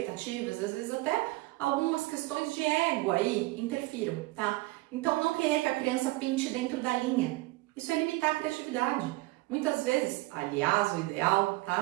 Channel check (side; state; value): left; quieter; 20.5 dB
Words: às vezes até algumas questões de ego aí interfiram, tá? Então, não querer que a criança pinte dentro da linha. Isso é limitar a criatividade. Muitas vezes, aliás, o ideal,